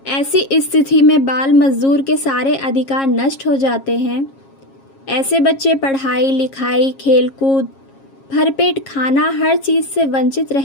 ऐसी स्थिति में बाल मजदूर के सारे अधिकार नष्ट हो जाते हैं। ऐसे बच्चे पढ़ाई लिखाई, खेलकूद, भरपेट खाना, हर चीज़ से वंचित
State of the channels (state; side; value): late; right; 7.4 ms